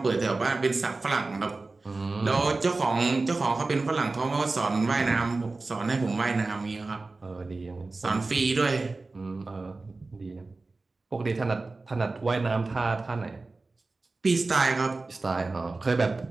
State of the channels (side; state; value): left; quieter; 3.5 dB